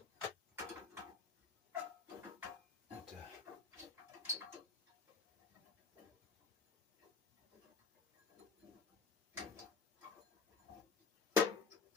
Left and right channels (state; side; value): quieter; right; 4.6 dB